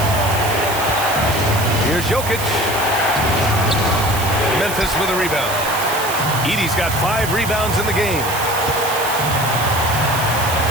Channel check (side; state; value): right; noise; hiss, 8 dB below the sound